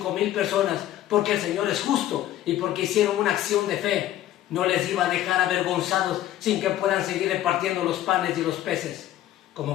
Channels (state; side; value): quieter; right; 13.2 dB